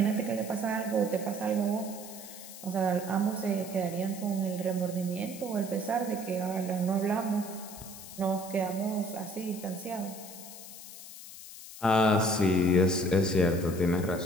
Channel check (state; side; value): noise; left; hiss, 14 dB below the sound